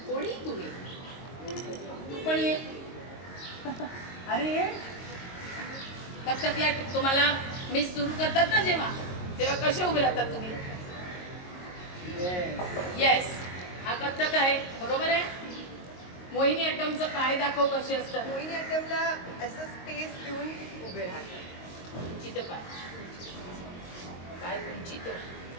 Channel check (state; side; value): late; right; 22 ms